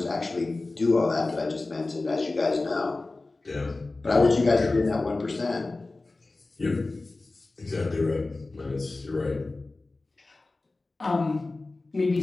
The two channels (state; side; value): quieter; right; 3.3 dB